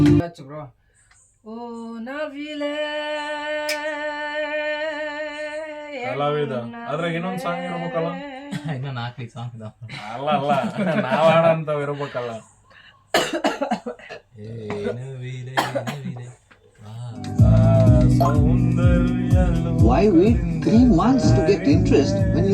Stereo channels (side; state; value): both; identical; correlation 1.00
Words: ಬ್ರೋ. ಓ ನವಿಲೆ ಕಲಾವಿದ ಅದ್ರಾಗ ಇನ್ನೊಂದು ಸಾಂಗ್ ಇರ್ಬೇಕಲ್ಲ. ಇನ್ನ 4 ಸಾಂಗ್ ಇದಾವ. ಅಲ್ಲ ನಾವ್ ಹಾಡಂತವ್ ಇರ್ಬೇಕಲ್ಲ. Why wait 3 months to get interest when